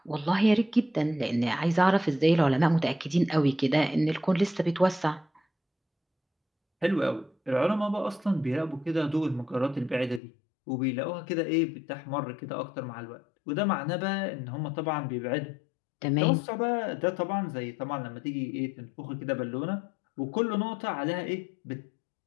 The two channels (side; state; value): right; drops out; at 10.2 s